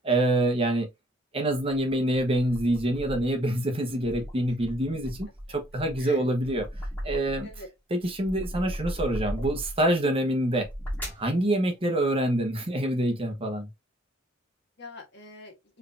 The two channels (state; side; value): normal; both; correlation 0.63